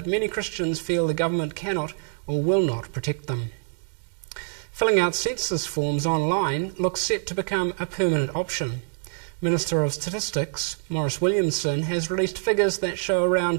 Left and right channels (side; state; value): left; silent; digital silence